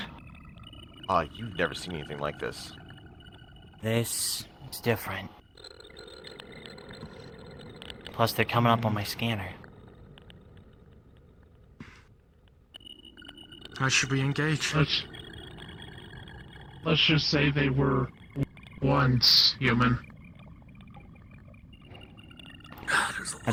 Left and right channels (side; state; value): both; identical; correlation 1.00